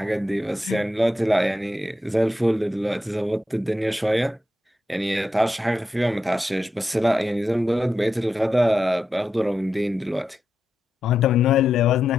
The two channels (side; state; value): both; normal; correlation 0.86